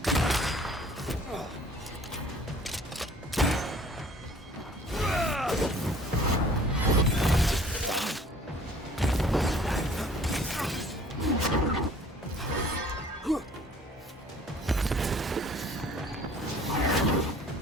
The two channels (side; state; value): both; normal; correlation 0.53